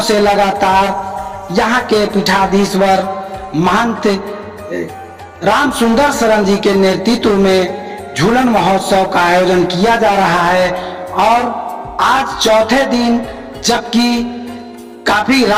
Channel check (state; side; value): identical; both; correlation 1.00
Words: से लगातार यहाँ के पीठाधीश्वर महंत राम सुंदर शरण जी के नेतृत्व में झूलन महोत्सव का आयोजन किया जा रहा है। और आज चौथे दिन, जबकि काफी